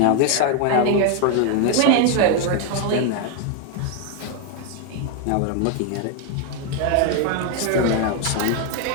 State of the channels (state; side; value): different; both; correlation 0.01